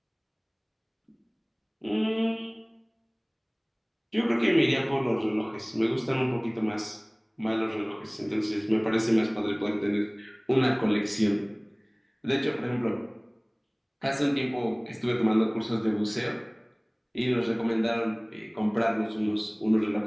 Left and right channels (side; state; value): both; identical; correlation 1.00